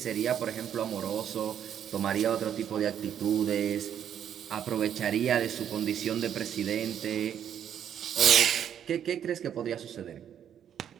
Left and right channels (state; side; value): quieter; left; 9.3 dB